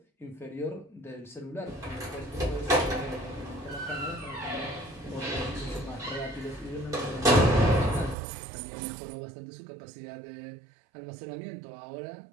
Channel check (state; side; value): drops out; left; at 8.2 s